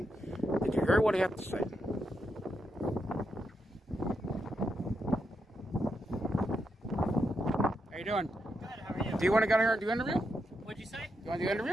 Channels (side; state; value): both; normal; correlation 0.83